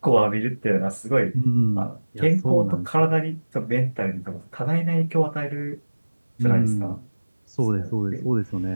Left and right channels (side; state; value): both; inverted; correlation -1.00